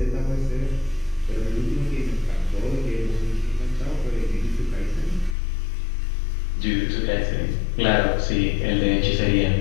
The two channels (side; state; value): right; drops out; at 5.4 s